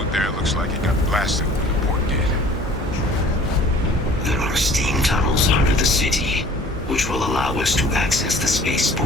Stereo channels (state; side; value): normal; both; correlation 0.50